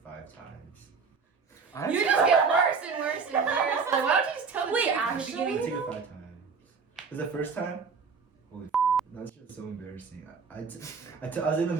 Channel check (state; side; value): quieter; left; 5.3 dB